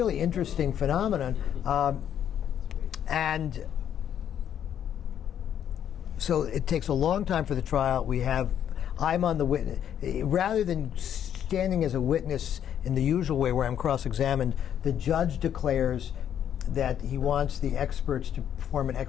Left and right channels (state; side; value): quieter; right; 9.6 dB